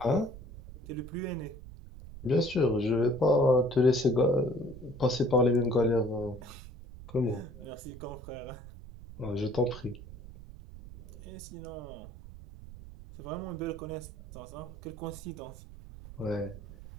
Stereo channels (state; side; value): noise; right; rumble, 15 dB below the sound